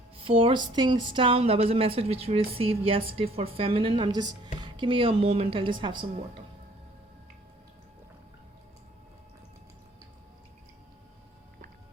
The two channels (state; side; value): normal; both; correlation 0.57